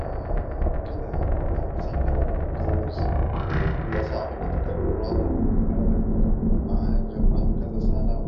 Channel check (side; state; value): both; identical; correlation 1.00